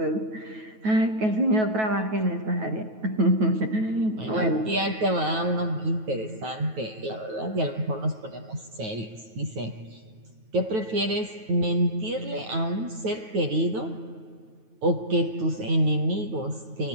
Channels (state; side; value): late; left; 9.3 ms